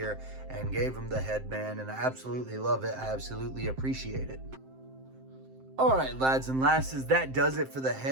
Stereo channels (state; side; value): late; left; 7.6 ms